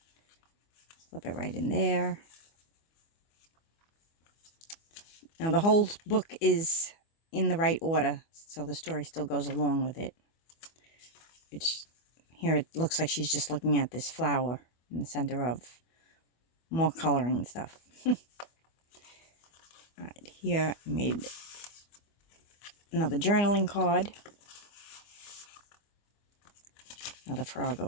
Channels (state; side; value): late; right; 24 ms